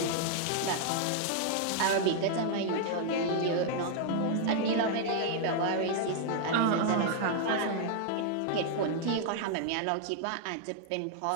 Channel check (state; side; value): different; both; correlation 0.00